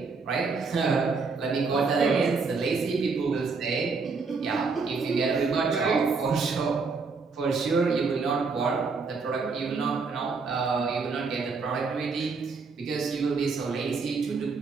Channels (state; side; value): quieter; left; 4.6 dB